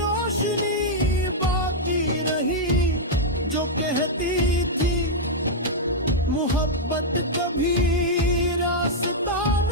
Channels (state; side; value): normal; both; correlation -0.05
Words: बाकी रही जो कहती थी मोहब्बत कभी रास्ता